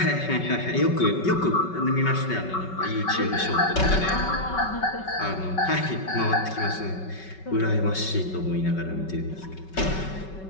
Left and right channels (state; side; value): late; right; 5.3 ms